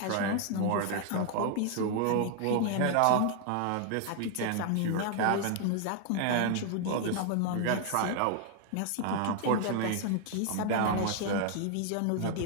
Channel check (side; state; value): both; different; correlation 0.00